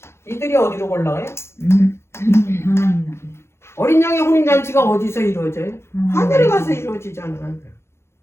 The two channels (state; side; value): late; right; 0.12 ms